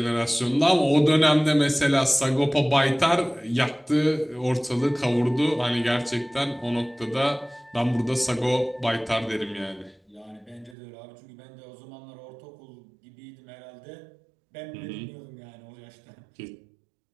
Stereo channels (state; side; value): drops out; left; at 10.8 s